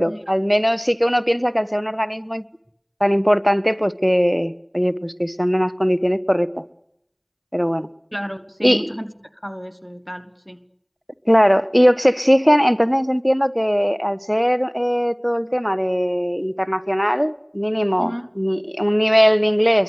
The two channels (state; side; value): identical; both; correlation 1.00